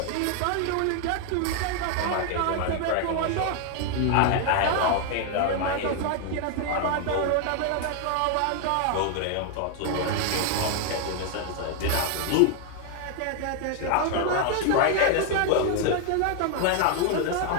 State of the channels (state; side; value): different; both; correlation 0.00